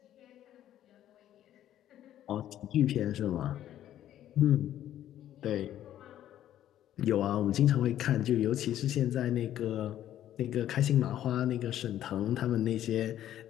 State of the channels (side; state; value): right; quieter; 11.9 dB